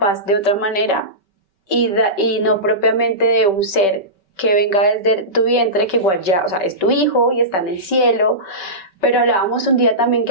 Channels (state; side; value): late; right; 5.2 ms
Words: de otra manera y no propiamente de un ser que venga desde tu vientre, que igual ya, o sea, es tu hijo y está en el cielo. Pero hablábamos un día también